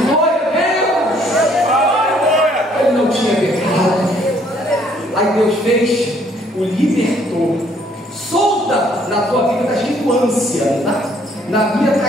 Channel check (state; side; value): normal; both; correlation 0.64